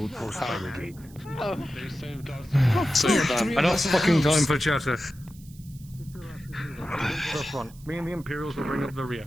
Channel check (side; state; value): right; noise; hiss, 24 dB below the sound